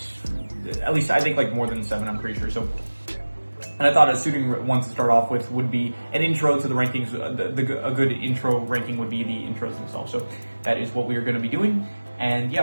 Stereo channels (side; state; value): both; inverted; correlation -1.00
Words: at least I think more than 7, I'm pretty sure, so. And I thought a suiting one to start off with would be an intro to the rankings. A good intro ranking would be the intros themselves. So that is what we are going to be doing. And